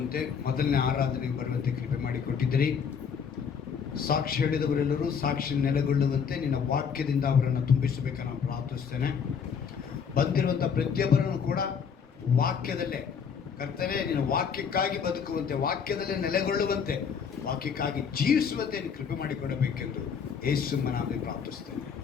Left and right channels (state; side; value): quieter; right; 6.7 dB